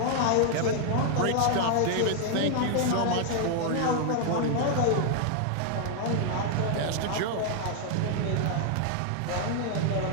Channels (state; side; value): different; both; correlation 0.00